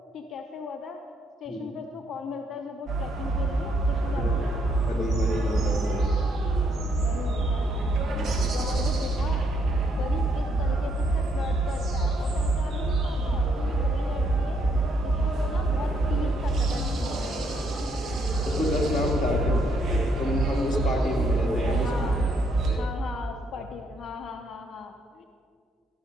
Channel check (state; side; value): normal; both; correlation 0.72